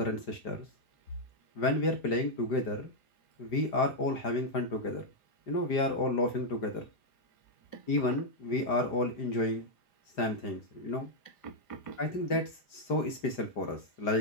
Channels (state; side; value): late; right; 5.0 ms